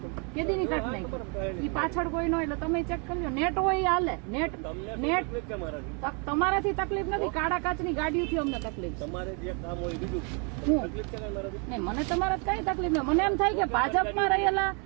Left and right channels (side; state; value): left; quieter; 36.2 dB